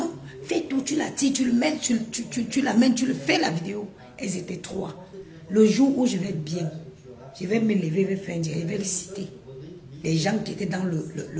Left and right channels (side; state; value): both; identical; correlation 1.00